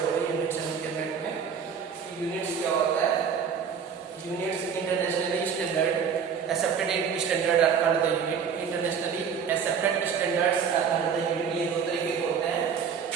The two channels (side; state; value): left; quieter; 7.0 dB